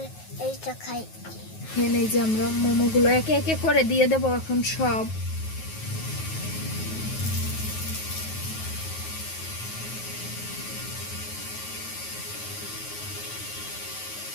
এইটা খাই। এখানে এই যে আমরা মোমোগুলো একে একে করে দিয়ে দেবো এখন সব।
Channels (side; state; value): right; late; 9.4 ms